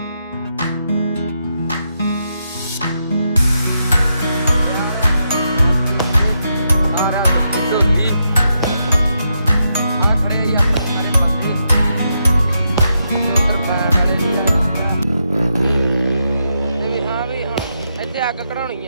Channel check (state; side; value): inverted; both; correlation -0.83